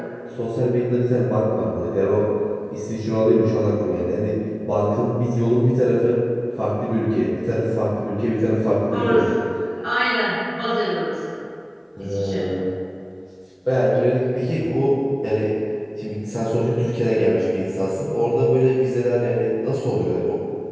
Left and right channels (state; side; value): identical; both; correlation 1.00